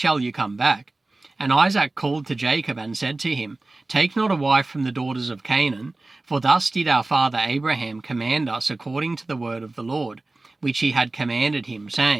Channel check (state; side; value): quieter; left; 3.1 dB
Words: you come back. And Isaac called to Jacob and said to him, Take not a wife from the daughters of Canaan, for thus did our father Abraham command us according to the word of the Lord, which he had commanded him,